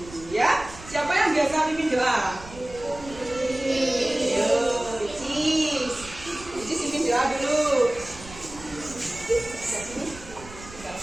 ya. Siapa yang biasa pimpin doa? Icis pimpin doa dulu.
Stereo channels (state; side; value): noise; right; rumble, 17 dB below the sound